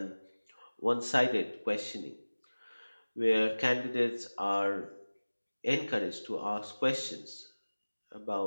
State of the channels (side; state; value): both; inverted; correlation -1.00